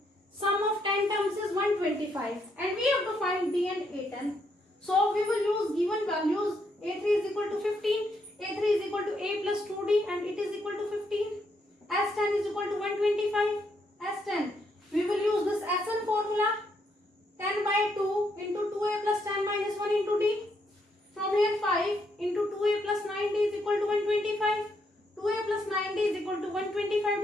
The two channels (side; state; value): both; normal; correlation 0.76